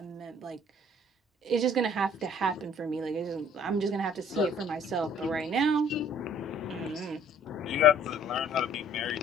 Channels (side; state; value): both; normal; correlation 0.56